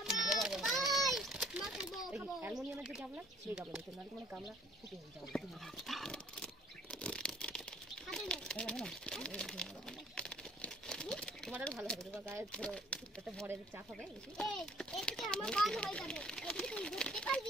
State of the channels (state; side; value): normal; both; correlation 0.57